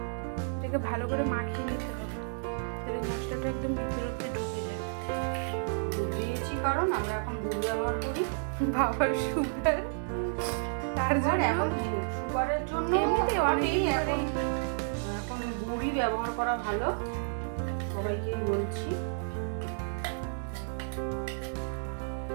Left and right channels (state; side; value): silent; left; digital silence